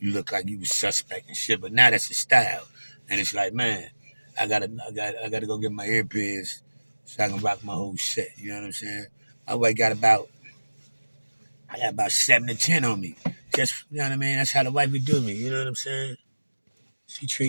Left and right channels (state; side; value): inverted; both; correlation -1.00